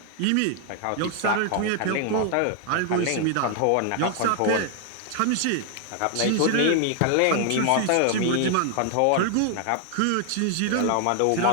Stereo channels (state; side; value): different; both; correlation 0.00